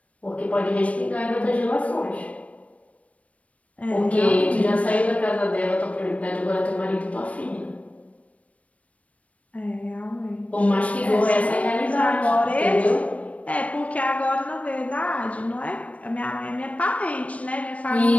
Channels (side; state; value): right; late; 0.066 ms